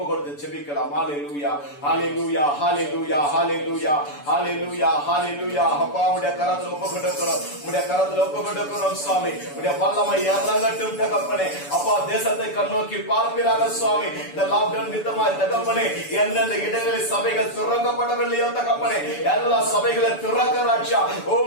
கொடுத்து செபிக்கலாம். ஹல்லேலூயா, ஹல்லேலூயா, ஹல்லேலூயா, ஹல்லேலூயா, ஹல்லேலூயா, ஹல்லேலூயா. அப்பா உம்முடைய கரத்தில் ஒப்பு கொடுக்கிறோம். உம்முடைய கரத்தில் ஒப்பு கொடுக்கிறோம் சுவாமி. உம்முடைய வல்லமை இறங்கட்டும் தகப்பனே. அப்பா தேசத்தை கண்ணோக்கி பார்ப்பீராக சுவாமி. இந்த லாக்டவுன் நிமித்தமாய் தகப்பனே எந்தெந்த இடங்களில் சபைகள் திறக்கப்படவில்லையோ தகப்பனே எல்லா சபைகளை திறக்க ராஜா.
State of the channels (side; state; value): right; late; 7.0 ms